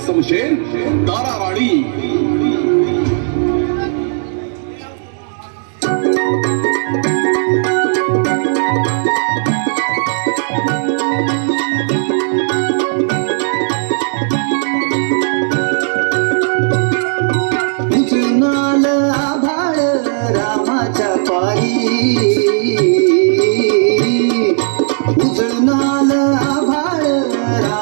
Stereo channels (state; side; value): silent; left; digital silence